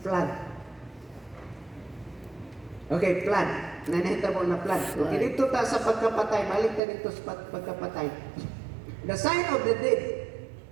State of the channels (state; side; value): drops out; left; at 6.8 s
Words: Okay, flood. Nanahita mo na flood. Flood. Okay, dito ta sa pagkapatay. Balik ta dito sa pagkapatay. The sign of the dead.